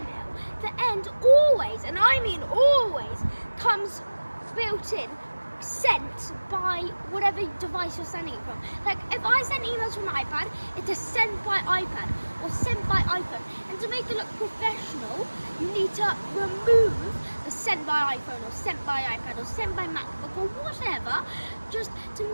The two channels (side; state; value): both; inverted; correlation -1.00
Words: the end always, and I mean always, comes built in, sent by whatever device you're sending it from. Like, if I send emails from an iPad, it is sent by iPad or sent by iPhone. And to make it look professional, you need to remove the sent by iPhone or sent by iPad or sent by MacBook or whatever, just to